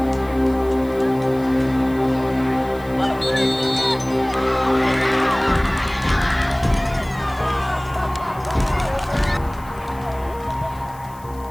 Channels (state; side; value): noise; left; hiss, 24 dB below the sound